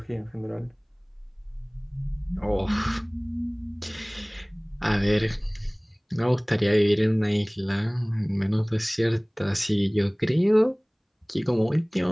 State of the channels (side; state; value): both; identical; correlation 1.00